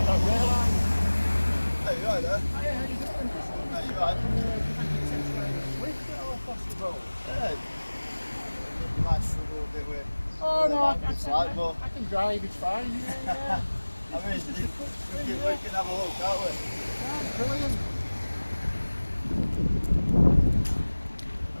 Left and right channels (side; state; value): both; inverted; correlation -1.00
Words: not realise. Hey, you right there? Hiya, how you doing? Hey, you right? Swift or across the road? Yeah. You might struggle a bit with. Oh no, I I can drive, it's fine. Yeah. I mean, we can have a look, can't we? Yeah, brilliant.